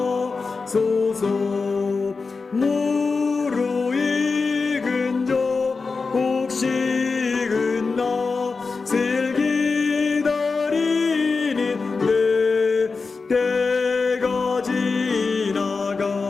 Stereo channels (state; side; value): quieter; right; 4.4 dB